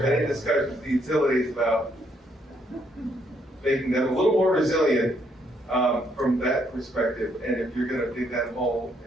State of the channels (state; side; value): normal; both; correlation 0.72